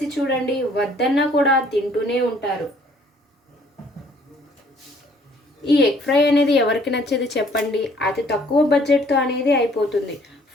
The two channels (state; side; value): normal; both; correlation 0.60